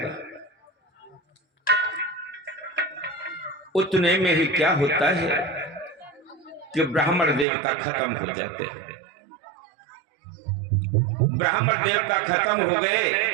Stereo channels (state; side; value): drops out; left; at 7.5 s